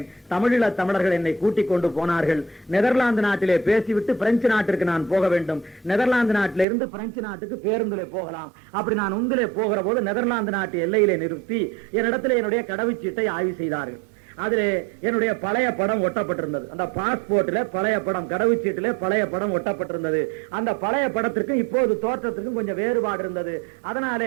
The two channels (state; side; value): drops out; left; at 6.7 s